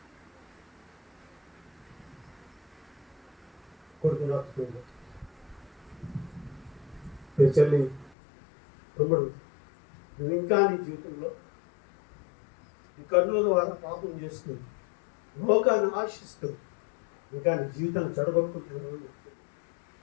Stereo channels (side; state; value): right; drops out; at 8.1 s